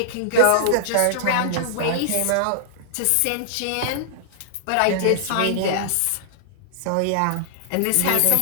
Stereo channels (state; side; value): different; both; correlation -0.01